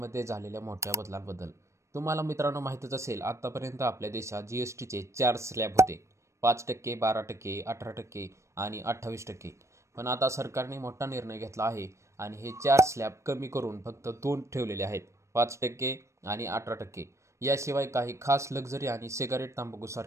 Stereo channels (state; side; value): late; left; 0.14 ms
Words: झालेल्या मोठ्या बदलांबद्दल. तुम्हाला मित्रांनो माहीतच असेल, आत्तापर्यंत आपल्या देशात जीएसटीचे 4 स्लॅब होते: 5%, 12%, 18% आणि 28%. पण आता सरकारने मोठा निर्णय घेतला आहे आणि हे 4 स्लॅब कमी करून फक्त 2 ठेवलेले आहेत: 5% आणि 18%. याशिवाय काही खास लक्झरी आणि सिगारेट,